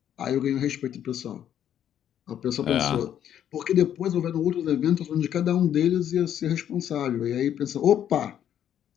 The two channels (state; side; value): quieter; right; 10.1 dB